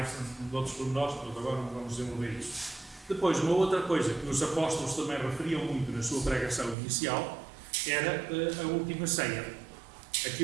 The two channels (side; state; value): left; drops out; at 6.8 s